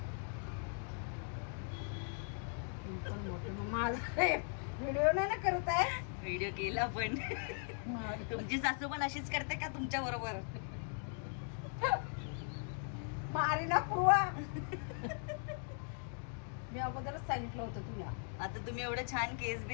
व्हिडिओ नाही ना करत आहे. व्हिडिओ केला पण तुमची सासू पण अशीच करते का तुमच्या बरोबर? मारी ना पूर्वा. मी अगोदरच सांगितलं होतं तुला. आता तुम्ही एवढे छान केस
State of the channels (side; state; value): right; silent; 52 dB below the other